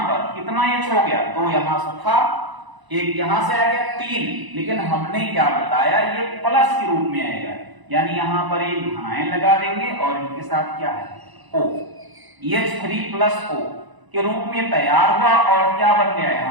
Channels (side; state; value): left; late; 1.0 ms